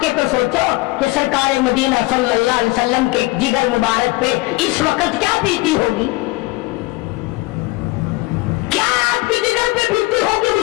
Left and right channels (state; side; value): quieter; right; 21.7 dB